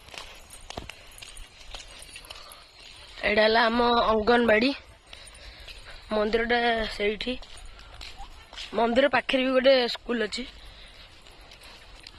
एडा हला हम अंगनवाड़ी मंदिर से मंदिर पाखे भी गोटे स्कूल अच्छी।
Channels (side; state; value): both; identical; correlation 1.00